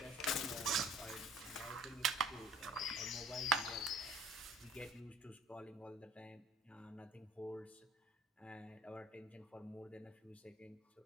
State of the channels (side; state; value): both; normal; correlation 0.52